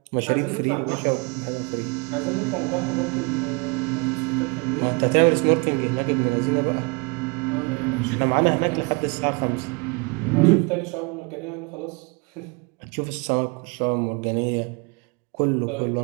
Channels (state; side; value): quieter; left; 31.1 dB